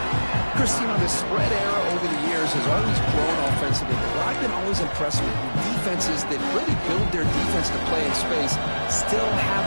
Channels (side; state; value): both; inverted; correlation -1.00